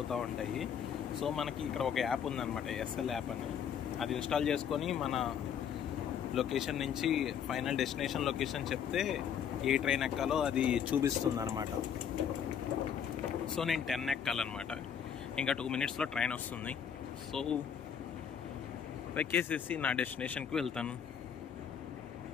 ఉంటాయి. సో మనకి ఇక్కడ ఒక యాప్ ఉందన్నమాట, ఎస్ఎల్ యాప్ అని. అది ఇన్స్టాల్ చేసుకొని మన లొకేషన్ నుంచి ఫైనల్ డెస్టినేషన్ లొకేషన్ చెప్తే ఏ ట్రైన్ ఎక్కాలో అది చూపిస్తుంది అనమాట. సో నేను 10 ఎక్కాలన్నమాట. ఇంకా 2 minutesలో ట్రైన్ వస్తుంది. సో ఎక్కేసేసి నా డెస్టినేషన్కి వెళ్తాను.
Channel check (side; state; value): right; quieter; 8.2 dB